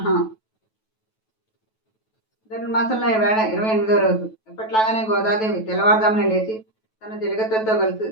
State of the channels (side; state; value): right; late; 9.2 ms